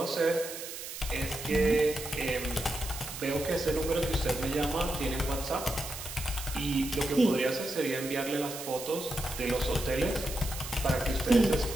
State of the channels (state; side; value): noise; right; hiss, 9 dB below the sound